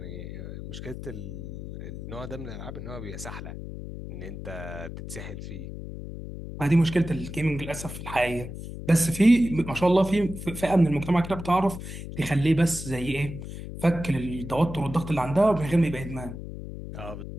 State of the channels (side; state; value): left; noise; hum, 9 dB below the sound